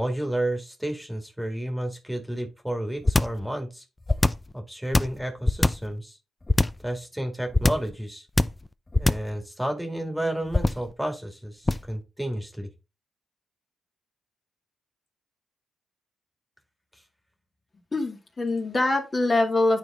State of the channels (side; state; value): both; normal; correlation 0.96